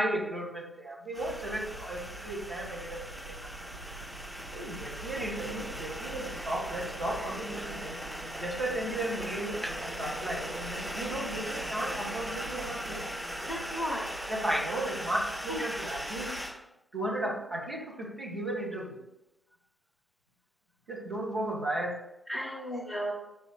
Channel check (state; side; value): normal; both; correlation 0.74